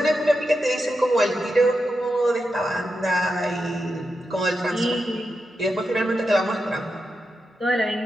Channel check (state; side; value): normal; both; correlation 0.88